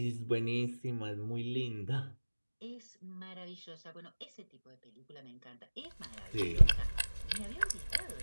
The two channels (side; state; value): both; inverted; correlation -1.00